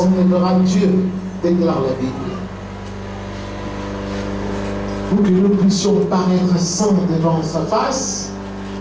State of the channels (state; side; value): identical; both; correlation 1.00